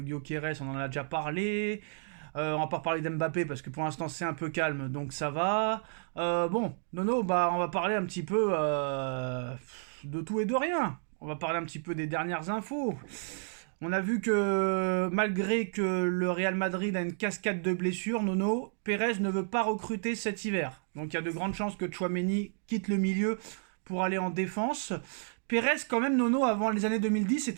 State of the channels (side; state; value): left; silent; digital silence